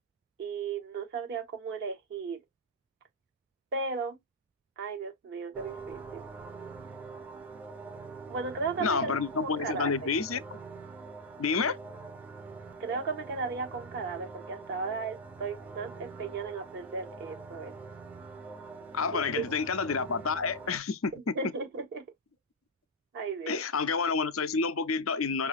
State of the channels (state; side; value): normal; both; correlation -0.03